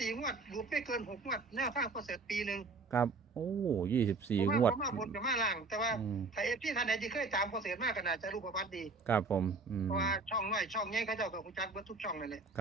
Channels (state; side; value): quieter; left; 4.0 dB